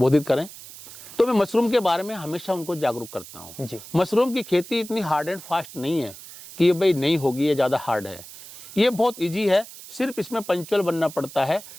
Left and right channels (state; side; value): noise; right; hiss, 16 dB below the sound